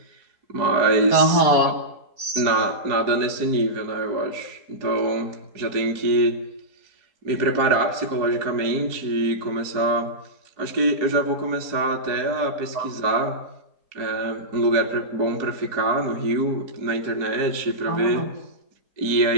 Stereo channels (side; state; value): left; late; 4.7 ms